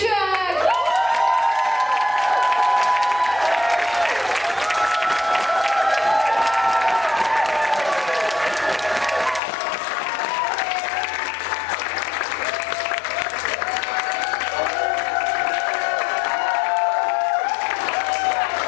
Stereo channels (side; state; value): right; drops out; at 9.4 s